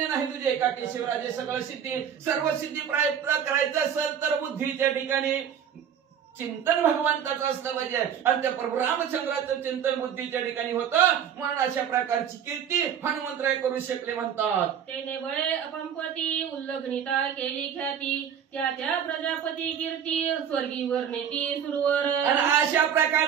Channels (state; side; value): quieter; left; 8.5 dB